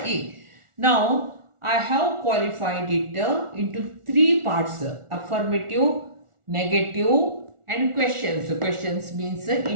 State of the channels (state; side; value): late; left; 1.4 ms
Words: Now, I have qualified it into three parts: affirmative, negative, and questions. So questions means